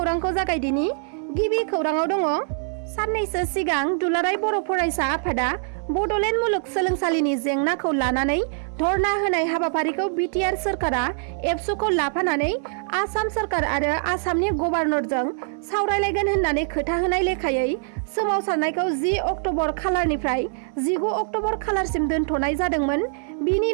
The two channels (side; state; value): left; silent; 63 dB below the other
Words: जागायदिनि। गिबि खौराङाव दङ। साननैसो सिगां दुलाराय बर' फरायसा आफादा बड'लेण्ड मुलुगसोलोंसालिनि जेंनाखौ लानानै धरना होनाय हाबाफारिखौ बिटिआर सोरखारा एबसुखौ लाफानानै आसाम सोरखार आरो आसामनि गभर्नरजों सावरायलायगोन होननानै खोथा होनाय लेखायै सोमावसारनायखौ 10 अक्ट'बर खालारनिफ्राय 19 अक्ट'बर खालारसिम दोनथ'नाय जादोंमोन। बिनि